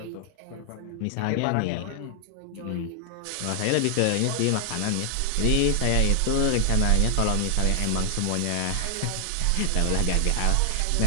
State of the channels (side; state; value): both; different; correlation 0.00